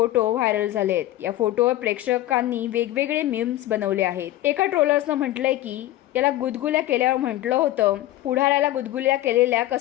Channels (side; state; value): right; quieter; 15.1 dB